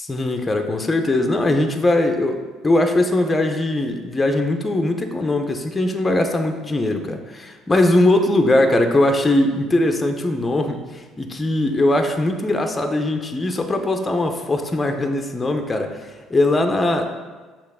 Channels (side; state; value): both; normal; correlation 0.83